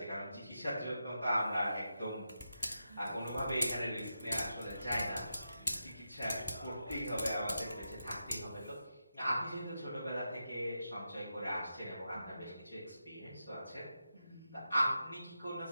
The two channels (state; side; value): inverted; both; correlation -0.88